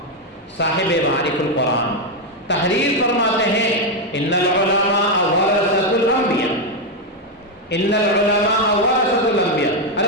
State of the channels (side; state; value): both; normal; correlation 0.04